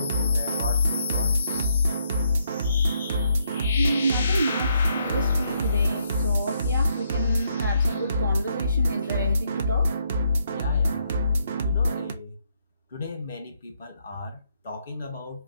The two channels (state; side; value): inverted; both; correlation -0.75